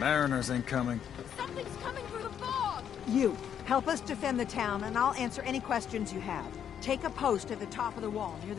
ain't coming. Something's coming through the fog! You, help us defend the town, and I'll answer any questions you have. Take a post at the top of the wall, near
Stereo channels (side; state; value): right; quieter; 8.9 dB